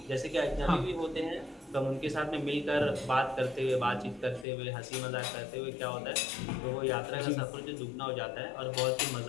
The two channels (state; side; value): drops out; right; at 4.5 s